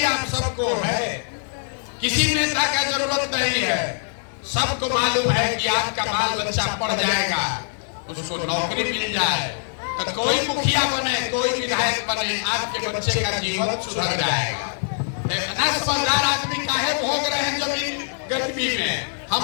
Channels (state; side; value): silent; right; digital silence